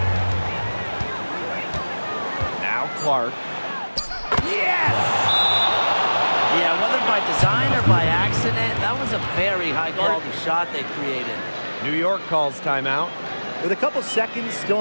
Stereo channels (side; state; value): both; inverted; correlation -1.00